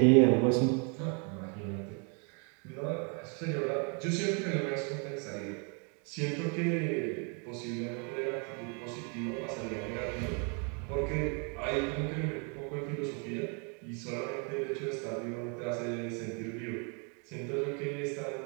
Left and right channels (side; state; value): left; quieter; 37.0 dB